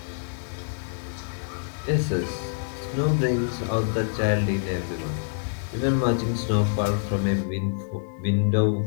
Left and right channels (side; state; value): right; silent; digital silence